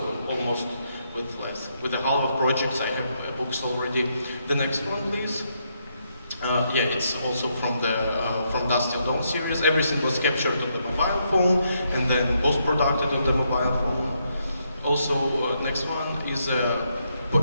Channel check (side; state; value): both; inverted; correlation -0.78